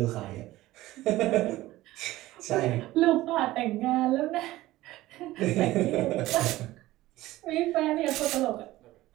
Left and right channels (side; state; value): left; quieter; 16.9 dB